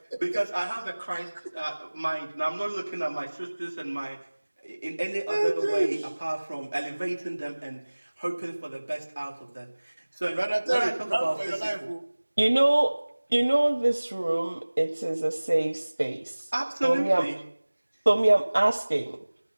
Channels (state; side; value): inverted; both; correlation -1.00